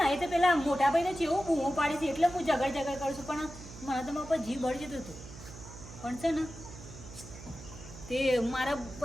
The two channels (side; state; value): right; noise; hum, 15 dB below the sound